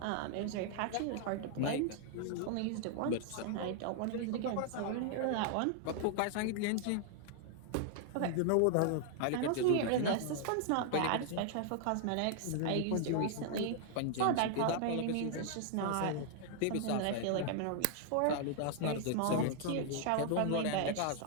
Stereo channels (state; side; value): different; both; correlation 0.00